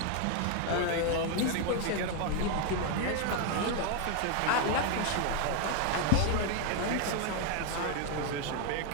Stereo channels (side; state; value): both; different; correlation 0.01